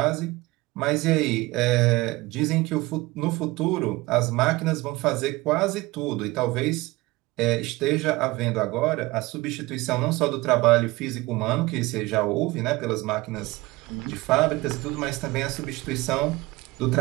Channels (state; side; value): quieter; left; 21.0 dB